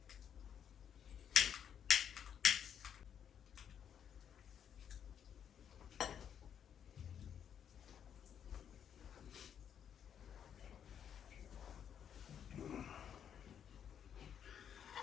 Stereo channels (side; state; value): right; quieter; 8.6 dB